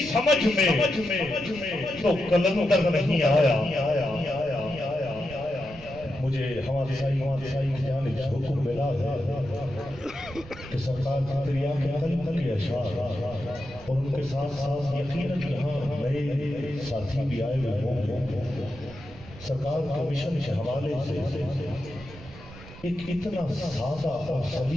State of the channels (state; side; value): noise; right; rumble, 17 dB below the sound